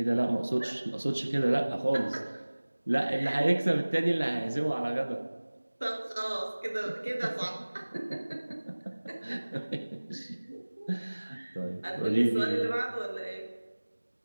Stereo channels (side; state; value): both; inverted; correlation -1.00